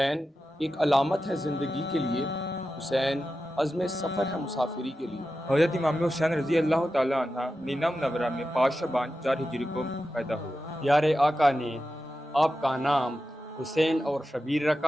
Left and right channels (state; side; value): normal; both; correlation 0.91